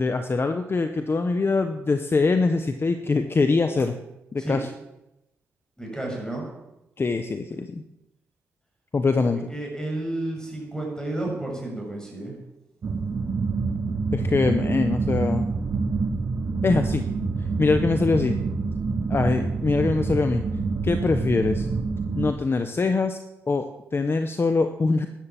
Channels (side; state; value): both; normal; correlation 0.86